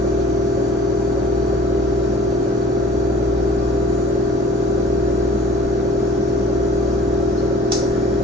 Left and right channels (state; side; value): normal; both; correlation 0.48